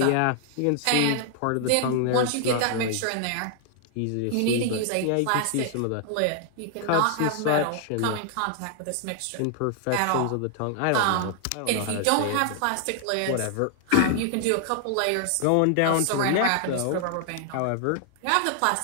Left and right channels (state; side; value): different; both; correlation 0.00